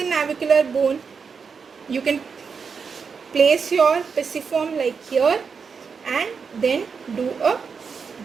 navicular bone. You can place your pisiform like here and then do a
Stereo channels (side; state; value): left; quieter; 5.7 dB